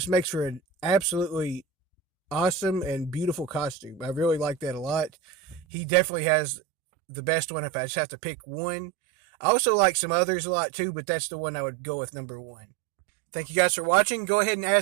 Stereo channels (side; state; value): left; drops out; at 5.7 s